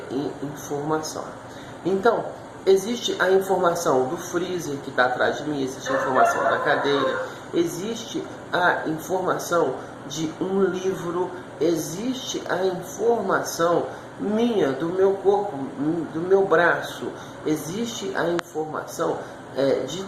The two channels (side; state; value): both; identical; correlation 1.00